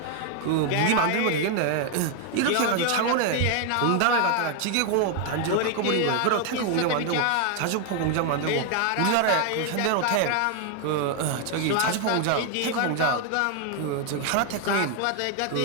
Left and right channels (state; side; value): different; both; correlation 0.00